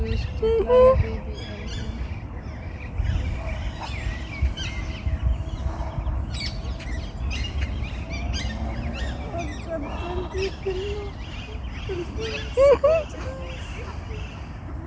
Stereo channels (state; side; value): identical; both; correlation 1.00